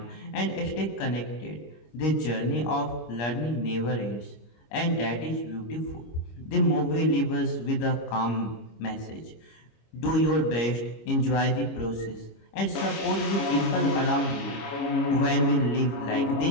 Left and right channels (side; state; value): right; late; 25 ms